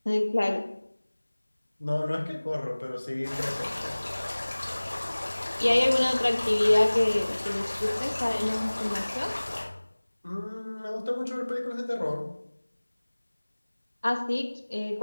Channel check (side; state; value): both; inverted; correlation -1.00